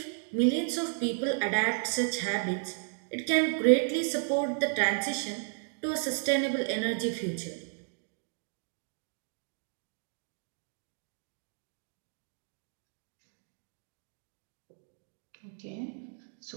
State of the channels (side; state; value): left; silent; 56 dB below the other